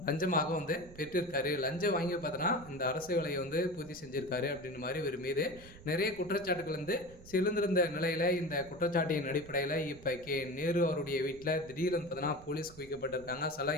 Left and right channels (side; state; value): right; noise; rumble, 19 dB below the sound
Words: லஞ்சமாக பெற்றிருக்காரு. லஞ்சம் வாங்கி பார்த்தோன்னா இந்த அரசு வேலையை பூர்த்தி செஞ்சுருக்காரு அப்படின்ற மாதிரி இவர் மீது நிறைய குற்றச்சாட்டுகள் சிலந்திருந்த நிலையில் இந்த குற்றச்சாட்டின் அடிப்படையில் இப்போ நேரு அவருடைய வீட்டில் திடீர்னு பார்த்தீங்கன்னா போலீஸ் குவிக்கப்பட்டிருக்காங்க.